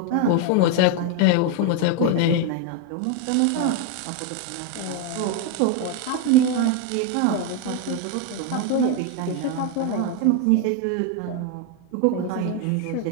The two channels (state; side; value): different; both; correlation 0.01